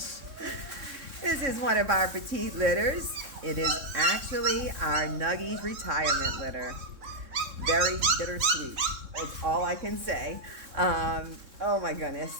This is one of our petite litters. It is actually our Nuggies retirement litter. Very bittersweet. That's all I can say. Oh my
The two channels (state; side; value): late; left; 3.6 ms